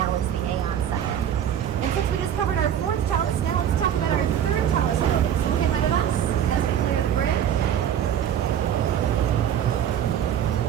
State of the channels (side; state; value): left; quieter; 9.7 dB